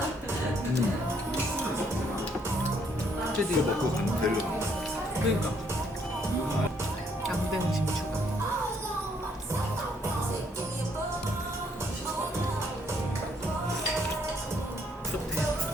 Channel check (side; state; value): both; normal; correlation 0.69